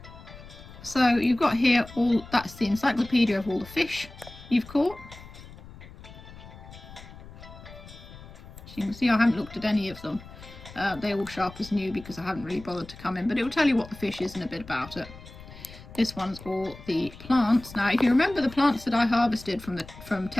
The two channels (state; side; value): noise; left; rumble, 17 dB below the sound